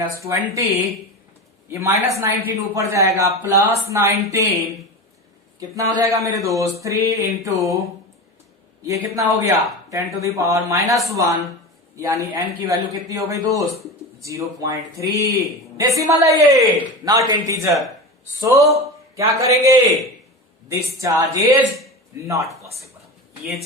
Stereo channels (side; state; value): both; normal; correlation 0.26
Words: ये -19 ऊपर जाएगा प्लस 19, कितना हो जाएगा मेरे दोस्त? 3 इंटू ये कितना हो गया 10 टू द पावर -1, यानी n की वैल्यू कितनी हो गई दोस्त? 0.3। डेसिमल है ये, नॉट इंटीजर। सो क्या करेंगे? This charge is not possible. ये